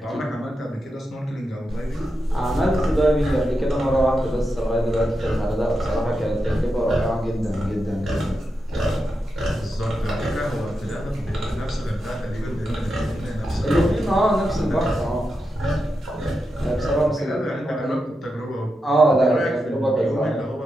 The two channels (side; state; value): both; normal; correlation 0.87